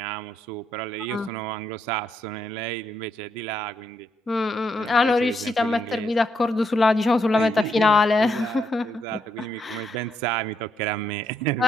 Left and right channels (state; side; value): normal; both; correlation 0.77